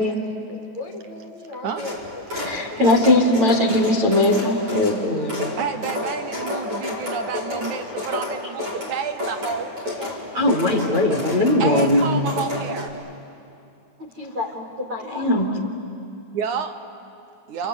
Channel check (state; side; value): late; left; 9.1 ms